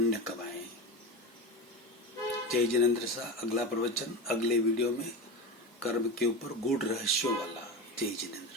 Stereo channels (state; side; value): normal; both; correlation 0.23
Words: कमाएं। जय जिनेंद्र शाह। अगला प्रवचन अगले वीडियो में कर्म के ऊपर गूढ़ रहस्यों वाला। जय जिनेंद्र।